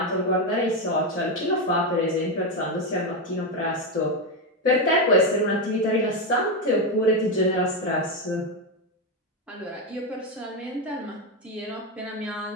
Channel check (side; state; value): both; normal; correlation 0.09